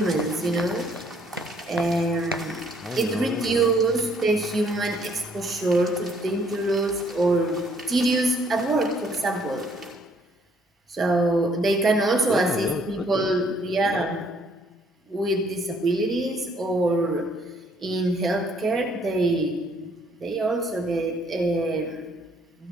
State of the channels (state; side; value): normal; both; correlation 0.65